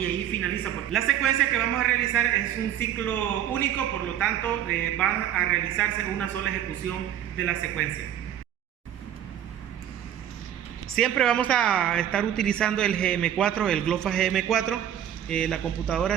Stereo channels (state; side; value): quieter; left; 10.5 dB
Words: ahí finaliza. La secuencia que vamos a realizar es un ciclo único, por lo tanto va a realizarse una sola ejecución de la secuencia. Siempre vamos a estar utilizando el GM4, el GLOFA GM4, la computadora